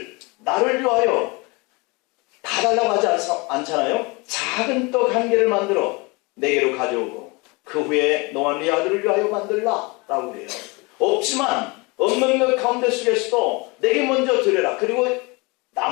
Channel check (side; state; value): right; quieter; 27.0 dB